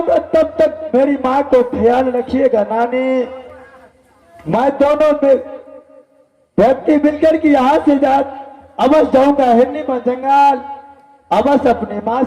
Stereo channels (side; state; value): both; identical; correlation 1.00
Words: तब तक मेरी माँ को ख्याल रखिएगा नानी। मैं दोनों में व्यक्ति मिलकर के यहाँ से अवश्य जाऊंगा हिरनी बन जंगल। अवश्य अपनी माँ